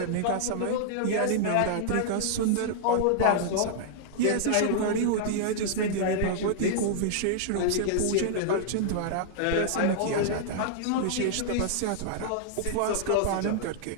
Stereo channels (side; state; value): both; different; correlation -0.01